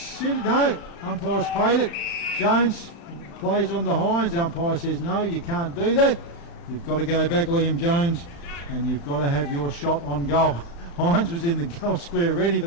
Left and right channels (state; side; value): late; right; 35 ms